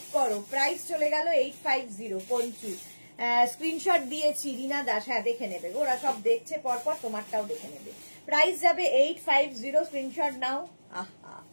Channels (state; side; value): inverted; both; correlation -1.00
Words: করো। প্রাইস চলে গেল 850 পঞ্চু। স্ক্রিনশট দিয়েছি রীনা দাস, হ্যাঁ দেখে নেবে, ওরা সব দেখছে পরপর, তোমারটাও দেখে নেবে। প্রাইস যাবে 850। স্ক্রিনশট নাও। আহা,